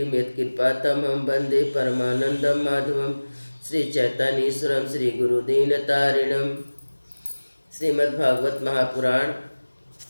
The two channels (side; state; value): both; inverted; correlation -1.00